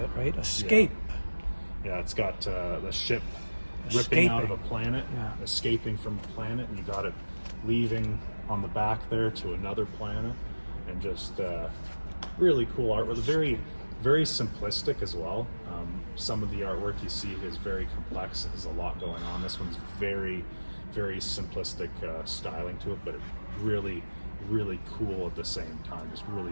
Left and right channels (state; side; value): inverted; both; correlation -1.00